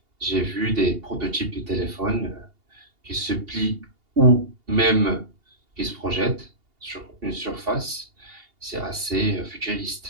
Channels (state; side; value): late; left; 2.8 ms